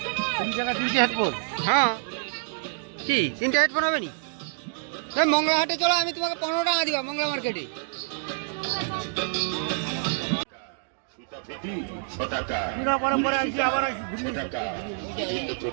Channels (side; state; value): left; silent; digital silence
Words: 3 টাকা 3টে হেডফোন হ্যাঁ কি 3টে হেডফোন হবে নি মংলা হাটে চলো আমি তোমাকে 15 টাকা দিবা মংলা মার্কেটে পরে আসি আবার আসি 6 টাকা বিভিন্ন